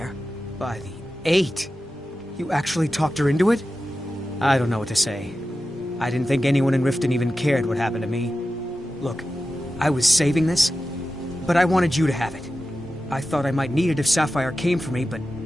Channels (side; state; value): both; normal; correlation 0.93